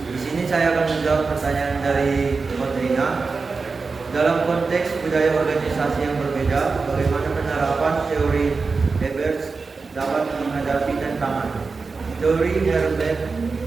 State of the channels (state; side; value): quieter; left; 4.4 dB